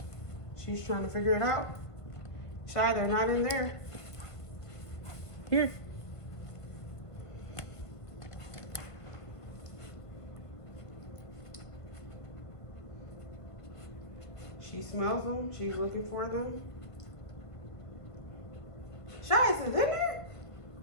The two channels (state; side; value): late; right; 1.5 ms